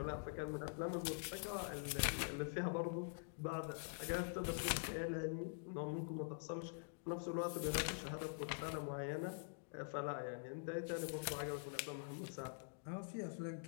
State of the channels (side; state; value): right; silent; digital silence